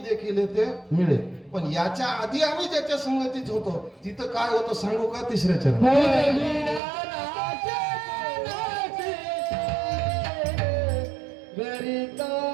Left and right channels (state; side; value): drops out; left; at 6.8 s